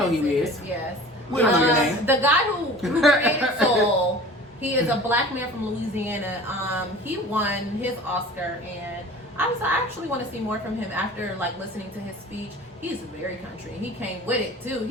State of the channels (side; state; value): both; normal; correlation 0.42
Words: who he is. Yes. We don't know your name. The guy who created Soul, he is a black man from Louisiana. He won his Oscar, and I actually want to see more from him after like listening to his speech. He's very country. He came with it too.